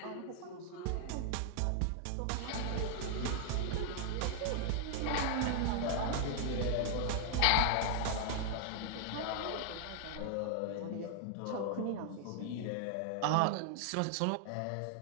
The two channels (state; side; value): different; both; correlation 0.00